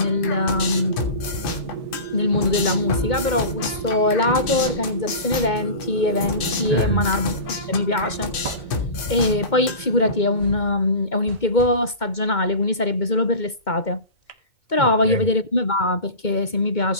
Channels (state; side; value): late; right; 2.2 ms